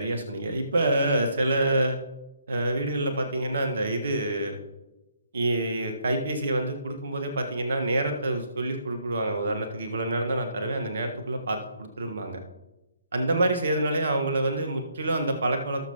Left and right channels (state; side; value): inverted; both; correlation -0.72